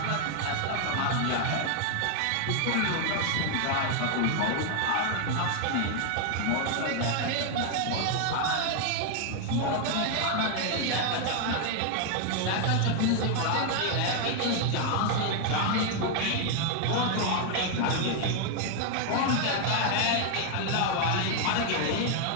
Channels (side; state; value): both; different; correlation 0.00